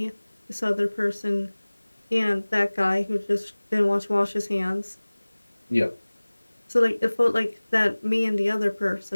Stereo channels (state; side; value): inverted; both; correlation -1.00